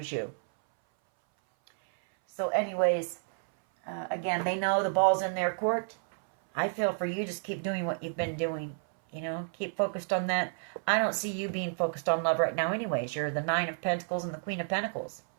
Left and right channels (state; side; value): silent; left; 57 dB below the other